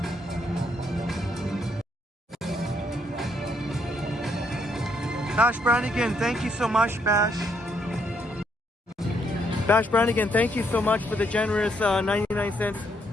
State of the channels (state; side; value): normal; both; correlation 0.73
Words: Bash Brannigan, thank you so much, Bash. Bash Brannigan, thank you so much for the generous 99 cents.